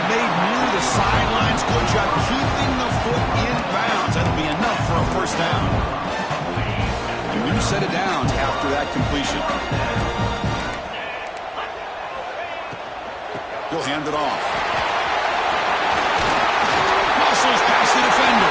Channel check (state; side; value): identical; both; correlation 1.00